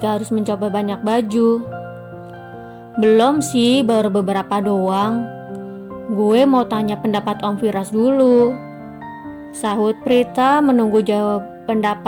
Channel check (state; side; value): identical; both; correlation 1.00